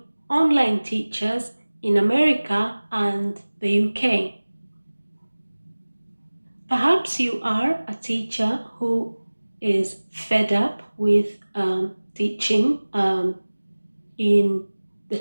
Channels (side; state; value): both; inverted; correlation -1.00